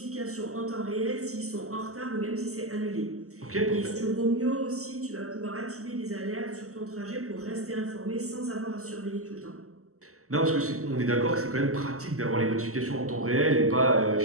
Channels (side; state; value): left; late; 0.64 ms